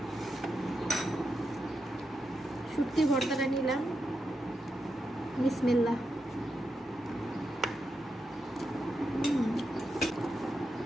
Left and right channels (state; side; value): normal; both; correlation 0.86